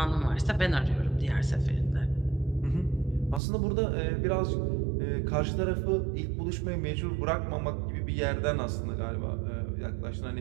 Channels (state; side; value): drops out; left; at 3.4 s